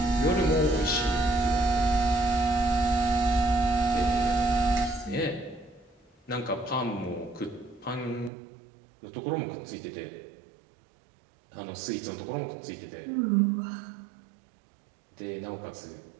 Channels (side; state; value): left; drops out; at 8.3 s